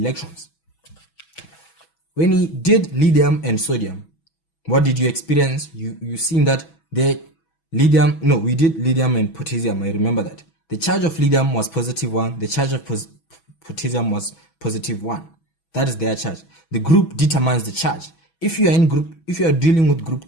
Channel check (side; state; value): right; late; 6.1 ms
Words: When we did lithium and sodium, what did you experience? You seen that we did lithium and potassium. I remember that the charge of lithium was +1, the charge of potassium was +1. That is their charge. The group determines the charge. If you are dealing with